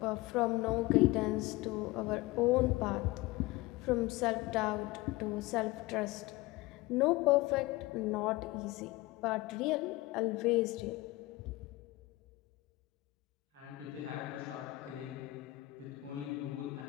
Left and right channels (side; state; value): right; quieter; 20.0 dB